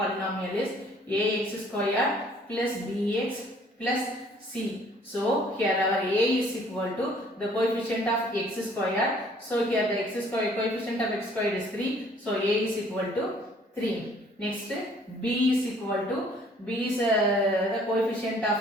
is ax squared plus bx plus c. So here our a is equal to the coefficient of x squared. So here the x squared, coefficient of x squared is 3. So a is equal to 3. Next, b is equal to, b is the coefficient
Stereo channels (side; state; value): both; normal; correlation 0.58